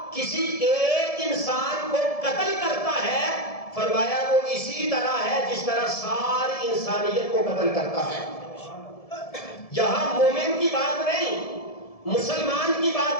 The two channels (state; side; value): late; right; 1.7 ms